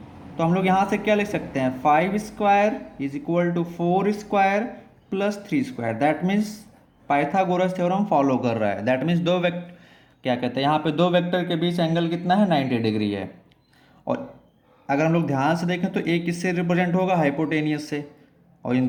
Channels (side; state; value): both; identical; correlation 1.00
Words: तो हम लोग यहाँ से क्या लिख सकते हैं, 5 square is equal to 4 square plus 3 square. That means Pythagoras theorem follow कर रहा है। दैट मीन्स दो वेक्टर क्या कहते हैं, यहाँ पे दो वेक्टर के बीच एंगल कितना है 90 डिग्री है। और अगर हम लोग ध्यान से देखें तो एक किससे रिप्रेजेंट होगा, हाइपोटेनियस से, और इन